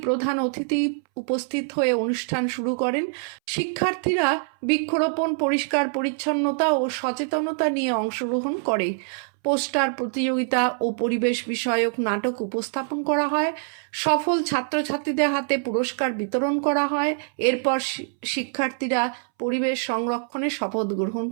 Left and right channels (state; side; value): silent; left; 62 dB below the other